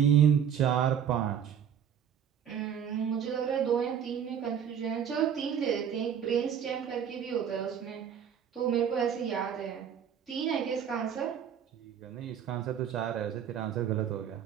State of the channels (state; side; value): quieter; left; 8.5 dB